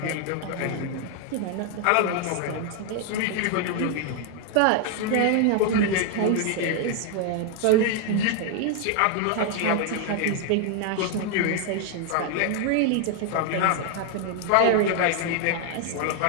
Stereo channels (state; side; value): different; both; correlation 0.00